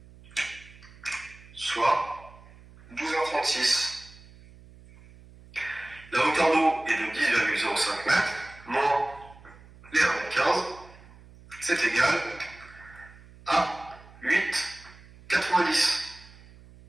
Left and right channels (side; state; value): right; noise; hum, 22 dB below the sound